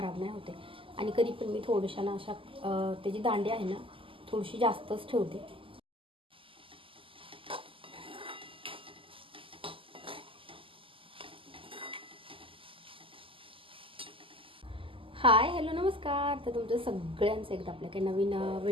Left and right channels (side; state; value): left; late; 0.25 ms